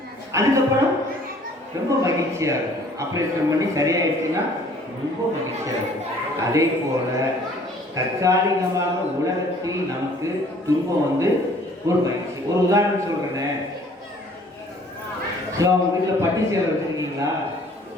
அதுக்கப்புறம் ரொம்ப மகிழ்ச்சியாக இருக்கும். ஆப்ரேஷன் பண்ணி சரியாயிடுச்சுன்னா ரொம்ப மகிழ்ச்சியாக இருக்கும். அதே போல் தற்காலிகமாக உலகத்தில் நமக்கு துன்பம் வந்து ஒரு மகிழ்ச்சி. ஒரு உதாரணம் சொல்கிறேனே, ஸோ அவங்க வீட்டில் பட்டி சேலை வச்சுருக்கீங்களா?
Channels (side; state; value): both; normal; correlation 0.55